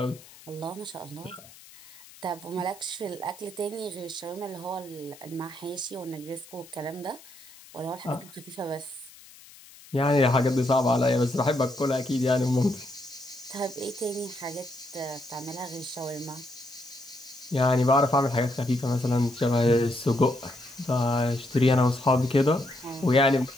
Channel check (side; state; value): left; noise; hiss, 21 dB below the sound